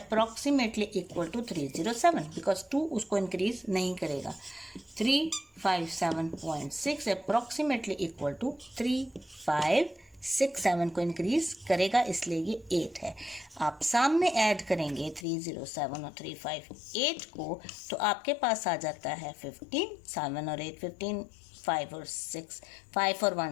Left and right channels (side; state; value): right; drops out; at 15.2 s